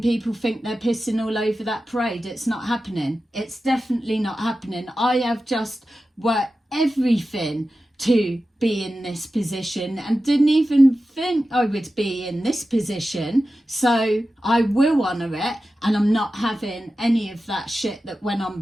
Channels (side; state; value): both; normal; correlation 0.93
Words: people think they're pissing all over that parade. It's not happening. It's definitely not happening. I have just worked everything to be in this position and didn't even think I would be in this position. So I will honour it, and I'm not having any of that shit that went on